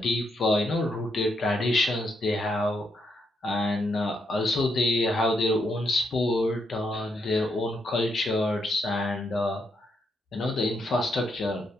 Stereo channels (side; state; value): both; normal; correlation 0.78